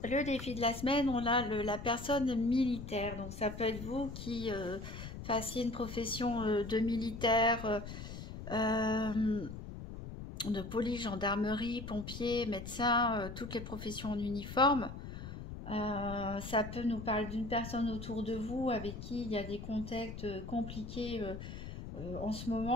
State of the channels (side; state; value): left; noise; rumble, 9 dB below the sound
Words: le défi de la semaine, on a la personne militaire. Donc ça peut être vous qui fassiez une profession de militaire, de police, gendarmerie, pompier, médecin, toutes les professions en uniforme. Ça peut nous parler d'une personne autour de vous avec qui il y a des contacts compliqués en ce